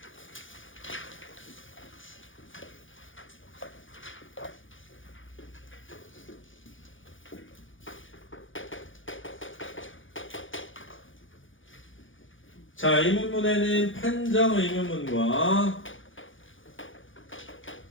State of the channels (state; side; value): late; right; 0.57 ms